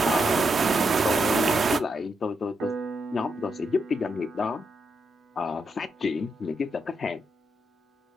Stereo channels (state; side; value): normal; both; correlation 0.82